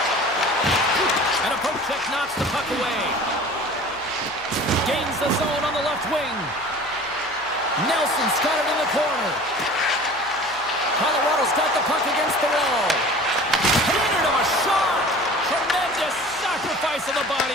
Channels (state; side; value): noise; left; hum, 26 dB below the sound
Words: And a poke check knocks the puck away. Gains the zone on the left wing. Nelson's got it in the corner. Colorado's got the puck against the wall. Hindered him a shot. Tremendous sacrifice of the